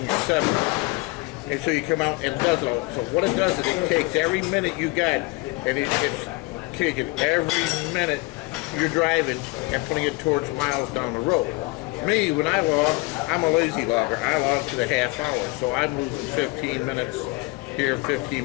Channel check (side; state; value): right; quieter; 24.6 dB